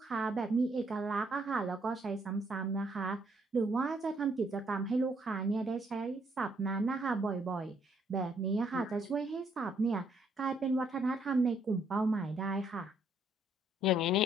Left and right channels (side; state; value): both; normal; correlation 0.70